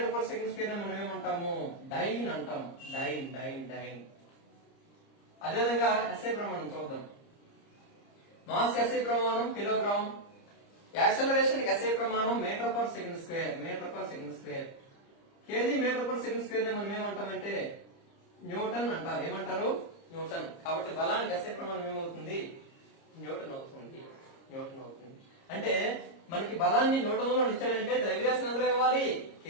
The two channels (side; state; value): right; late; 30 ms